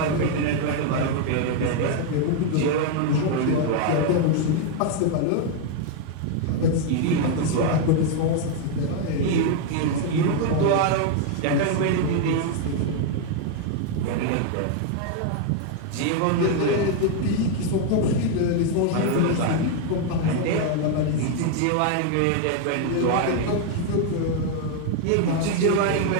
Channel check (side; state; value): both; different; correlation 0.00